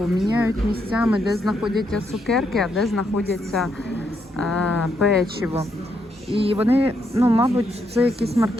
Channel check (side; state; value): both; normal; correlation 0.78